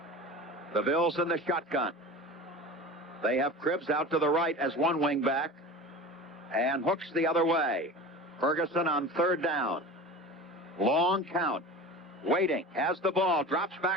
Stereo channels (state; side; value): normal; both; correlation 0.34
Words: The Bills in the shotgun. They have Cribbs out to the right as one wing back and Hooks the other way. Ferguson on third down. Long count. Waiting. Has the ball. Drops